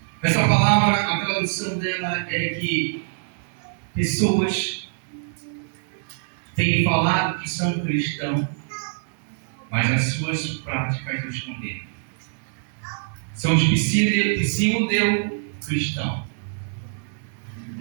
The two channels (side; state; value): left; silent; digital silence